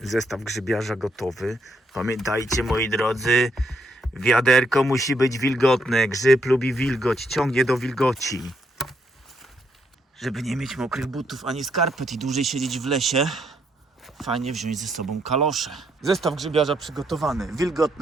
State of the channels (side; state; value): both; normal; correlation 0.74